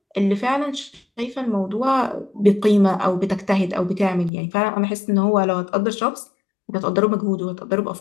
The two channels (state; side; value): drops out; right; at 4.3 s